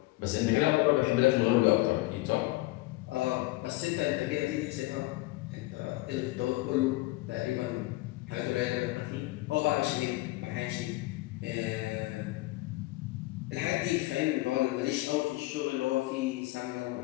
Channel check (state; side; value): quieter; right; 20.0 dB